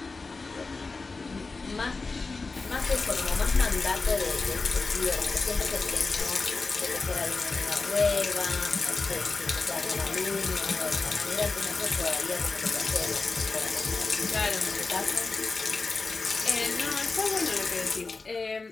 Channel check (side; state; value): right; quieter; 4.0 dB